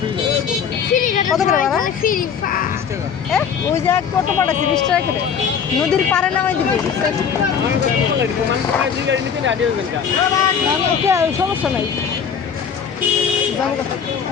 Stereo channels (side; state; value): right; quieter; 7.1 dB